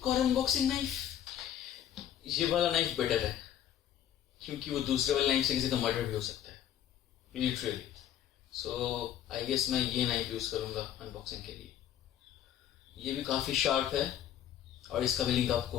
और अनबॉक्सिंग नाइफ। ये वाला नाइफ बेटर है क्योंकि वो दूसरे वाले नाइफ से किसी का मर्डर भी हो सकता है, लिटरली। सो आई गेस मैं ये नाइफ यूज करूंगा अनबॉक्सिंग के लिए। ये भी काफी शार्प है और इसका भी लिंक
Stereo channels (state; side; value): quieter; right; 10.7 dB